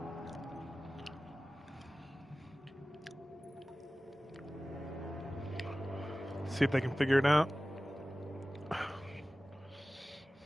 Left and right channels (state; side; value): normal; both; correlation 0.97